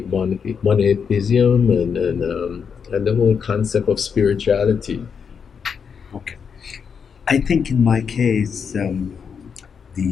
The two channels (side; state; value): right; quieter; 6.5 dB